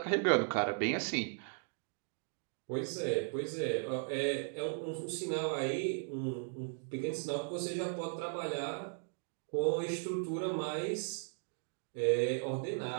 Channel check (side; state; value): left; silent; 53 dB below the other